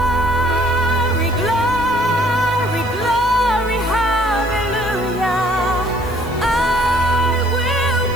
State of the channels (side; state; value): right; noise; hiss, 22 dB below the sound